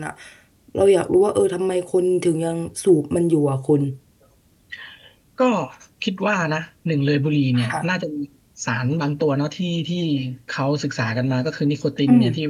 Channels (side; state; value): both; identical; correlation 1.00